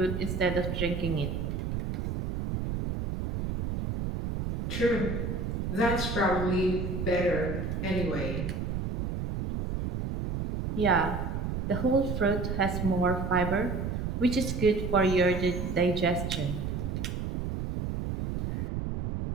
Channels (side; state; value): right; noise; rumble, 3 dB below the sound